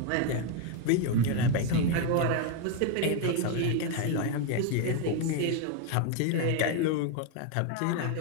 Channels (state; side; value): different; both; correlation 0.01